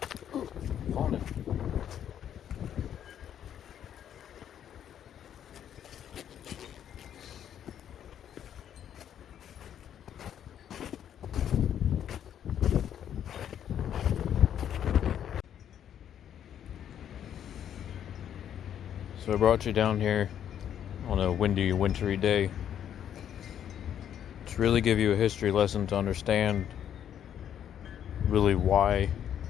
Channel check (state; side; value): quieter; right; 9.7 dB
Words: I brought you down here on a windy, wintry day to really give you a history lesson to understand really why